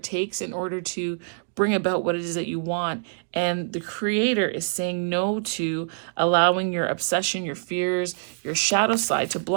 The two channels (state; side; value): silent; left; digital silence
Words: takes in order to bring about what it is that you want. And the Creator is saying no to allowing your obsession, your fears, your shadow side to